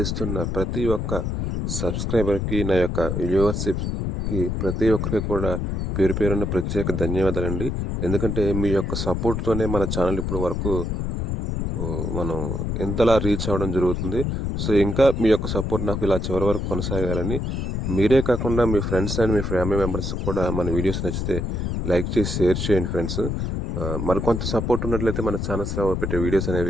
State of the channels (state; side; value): noise; left; rumble, 1 dB below the sound